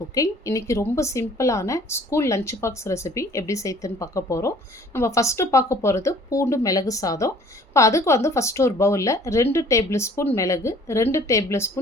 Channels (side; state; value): both; normal; correlation 0.53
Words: இன்றைக்கி ரொம்ப சிம்பிளான ஸ்கூல் லஞ்ச் பாக்ஸ் ரெசிபி எப்படி செய்யுதுன்னு பார்க்க போகிறோம். நம்ம ஃபஸ்ட்டு பார்க்க போகிறது பூண்டு மிளகு சாதம். இப்போ அதுக்கு ஃபஸ்ட்டு ஒரு பவுலில் 2 டேபிள் ஸ்பூன் மிளகு, 2 டேபிள்